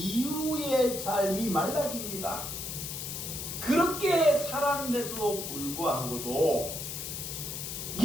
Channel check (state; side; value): noise; left; hiss, 6 dB below the sound